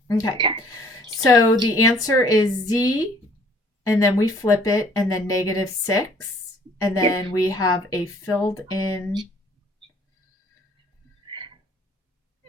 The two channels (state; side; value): normal; both; correlation 0.58